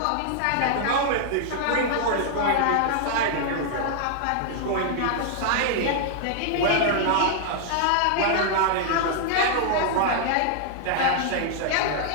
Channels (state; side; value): different; both; correlation -0.01